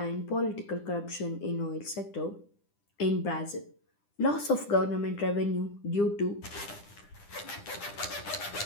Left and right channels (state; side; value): late; right; 9.9 ms